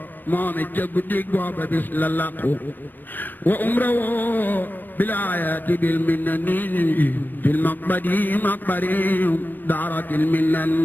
moom it ca guddik booba bis la laqu wa umra woo bilaayati bil minnani fil maqbadi maqbari daaratil minnan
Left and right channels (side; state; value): right; late; 0.091 ms